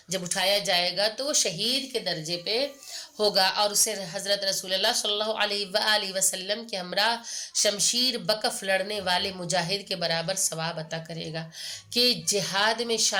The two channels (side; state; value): both; identical; correlation 1.00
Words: جب اٹھایا جائے گا تو وہ شہید کے درجے پہ ہوگا، اور اسے حضرت رسول اللہ صلی اللہ علیہ وآلہ وسلم کے ہمراہ شمشیر بکف لڑنے والے مجاہد کے برابر ثواب عطا کرے گا۔ کہ جہاد میں